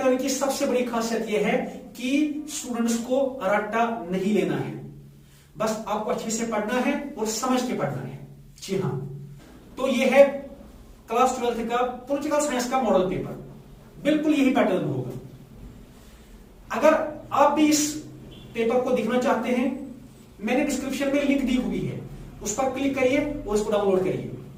की सबसे बड़ी खासियत यह है कि स्टूडेंट्स को रट्टा नहीं लेना है, बस आपको अच्छे से पढ़ना है और समझ के पढ़ना है। जी हाँ, तो ये है क्लास 12th का पॉलिटिकल साइंस का मॉडल पेपर, बिल्कुल यही पैटर्न होगा। अगर आप भी इस पेपर को देखना चाहते हैं, मैंने डिस्क्रिप्शन में लिंक दी हुई है, उस पर क्लिक करिए और इसको डाउनलोड करिए,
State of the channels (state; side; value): identical; both; correlation 1.00